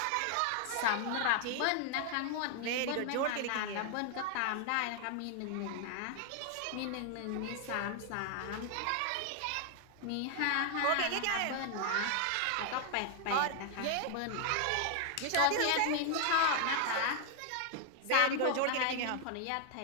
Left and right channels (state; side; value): different; both; correlation 0.00